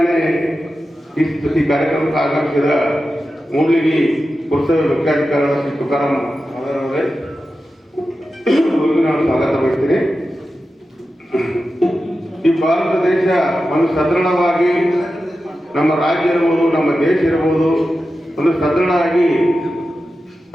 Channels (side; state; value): both; normal; correlation 0.92